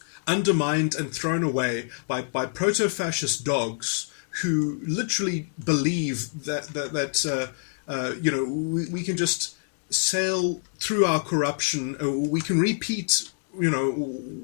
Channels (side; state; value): right; silent; digital silence